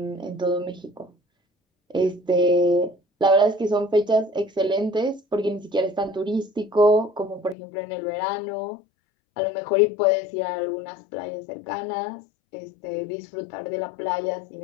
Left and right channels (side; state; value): right; drops out; at 7.6 s